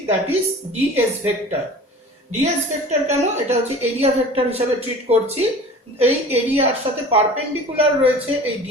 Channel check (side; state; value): both; normal; correlation 0.41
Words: that is DS vector. DS vector কেন? এটা হচ্ছে এরিয়া ভেক্টর হিসেবে ট্রিট করছি। এই এরিয়ার সাথে পারপেন্ডিকুলার রয়েছে এই